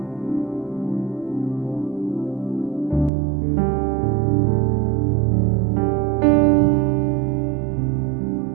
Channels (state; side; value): drops out; left; at 3.1 s